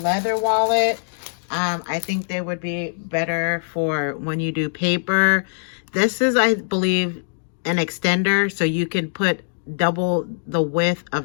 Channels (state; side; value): silent; right; digital silence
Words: leather wallet. I think they would be better for when you do paper. This is, I believe, an extender, so you can put double the width